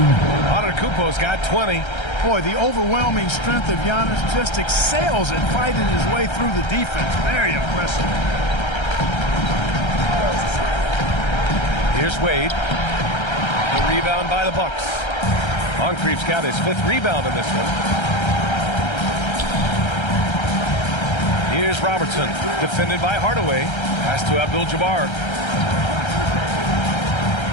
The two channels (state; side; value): late; right; 1.3 ms